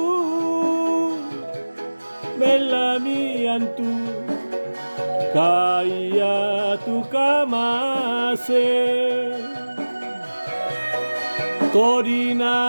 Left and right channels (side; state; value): both; inverted; correlation -1.00